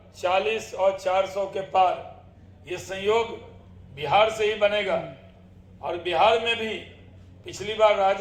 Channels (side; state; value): both; identical; correlation 1.00